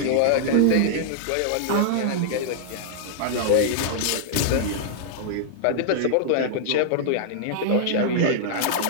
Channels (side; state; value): both; different; correlation -0.01